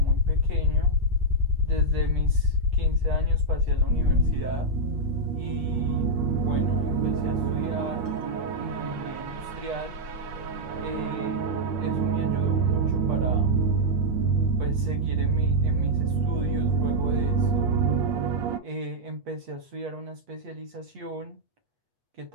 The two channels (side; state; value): left; late; 8.4 ms